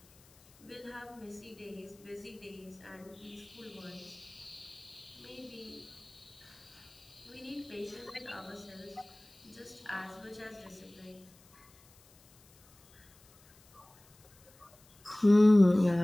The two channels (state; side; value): noise; left; hiss, 27 dB below the sound